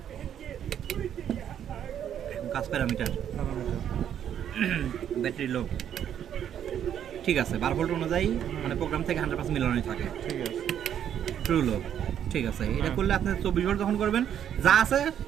কাজ প্যারামিটার ব্যাটারি লো, ঠিক আছে 12 ভোল্ট অনুযায়ী মানে প্রোগ্রাম থেকে 100% মিলানোই থাকে। ঠিক আছে, ট্রু লো, ঠিক আছে। এটা করলে আপনি 24 ভোল্ট যখন করবেন যা আছে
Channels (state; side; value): quieter; left; 9.6 dB